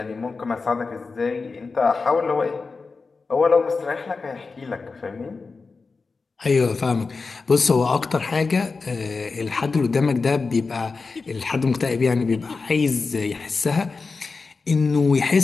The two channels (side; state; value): right; quieter; 4.3 dB